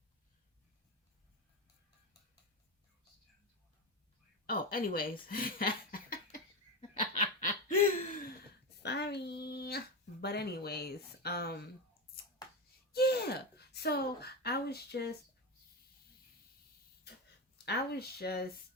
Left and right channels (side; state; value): both; normal; correlation 0.16